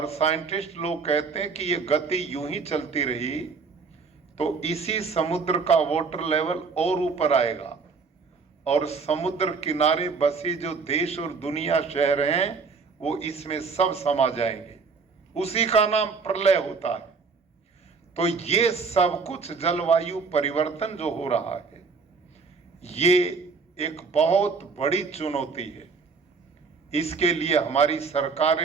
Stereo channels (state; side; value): quieter; left; 4.9 dB